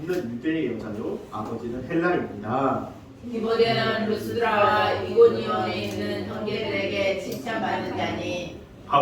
믿는 유대의 여자요 아버지는 헬라입니다. 디모데는 루스드라와 이고니온에 있는 형제들에게 칭찬받는 자니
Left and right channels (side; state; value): both; identical; correlation 1.00